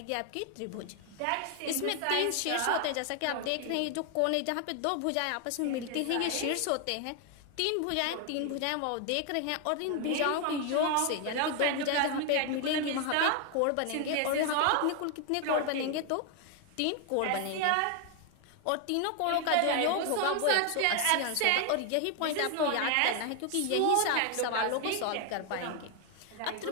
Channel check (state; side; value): different; both; correlation 0.00